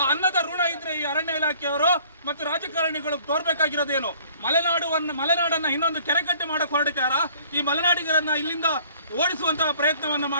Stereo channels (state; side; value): inverted; both; correlation -0.55